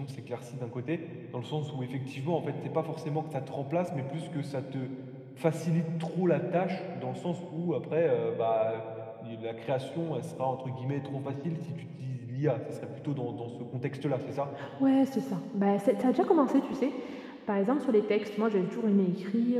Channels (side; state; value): both; identical; correlation 1.00